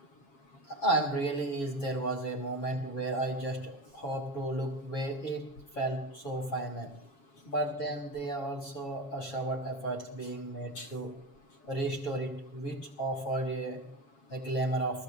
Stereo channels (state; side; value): late; right; 7.3 ms